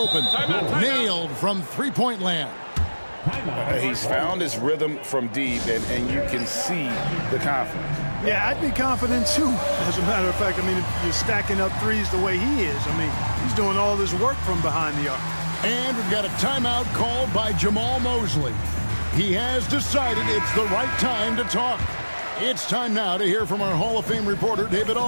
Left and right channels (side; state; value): both; inverted; correlation -1.00